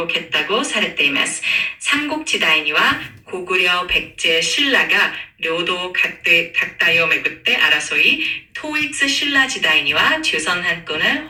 されています。삼국時代には고구려 백제 신라가 료도 각다요巡って争い、토이츠 신라時代には조선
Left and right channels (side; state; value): both; identical; correlation 1.00